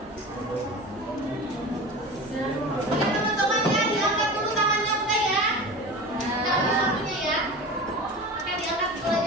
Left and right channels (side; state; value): both; normal; correlation 0.32